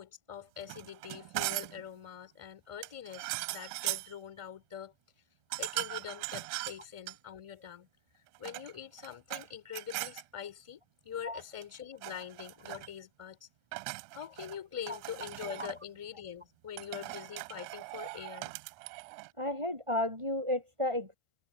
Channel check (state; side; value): late; left; 1.5 ms